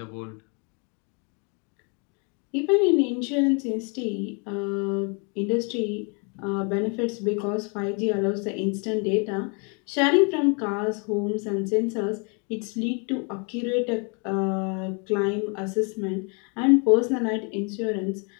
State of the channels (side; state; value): right; quieter; 35.5 dB